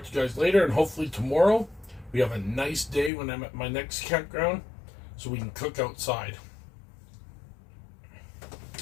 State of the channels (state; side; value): drops out; right; at 3.1 s